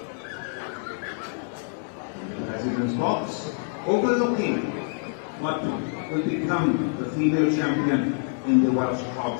president's box, overlooking what will become the female champion in the Welsh Cob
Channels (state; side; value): silent; right; 61 dB below the other